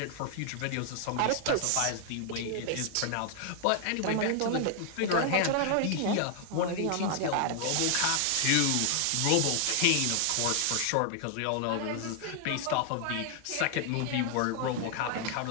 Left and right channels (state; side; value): different; both; correlation 0.00